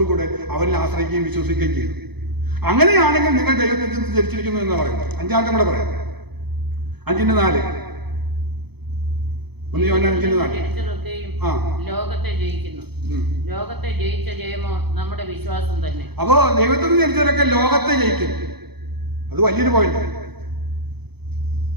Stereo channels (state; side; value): late; left; 0.98 ms